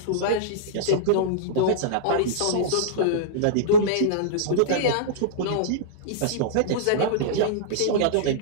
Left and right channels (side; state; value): both; different; correlation -0.03